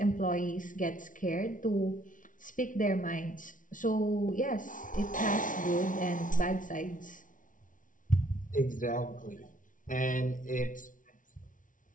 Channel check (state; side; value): late; right; 0.38 ms